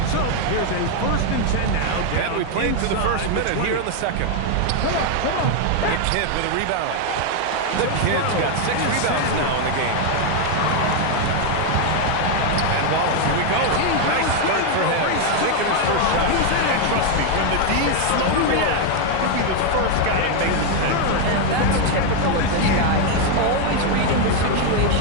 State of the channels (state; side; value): different; both; correlation 0.01